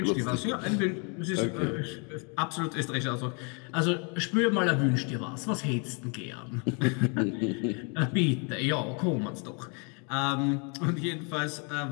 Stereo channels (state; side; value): quieter; right; 35.8 dB